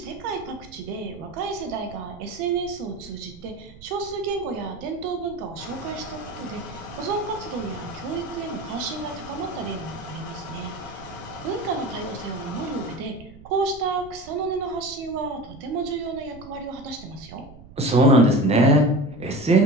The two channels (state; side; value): noise; right; rumble, 19 dB below the sound